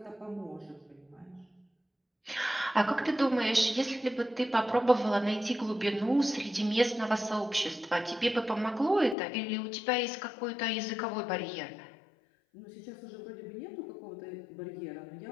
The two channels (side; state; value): right; drops out; at 9.2 s